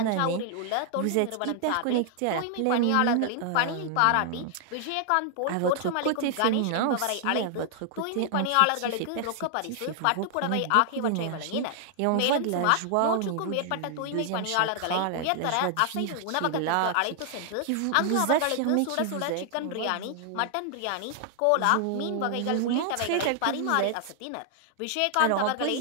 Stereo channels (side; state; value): both; different; correlation 0.00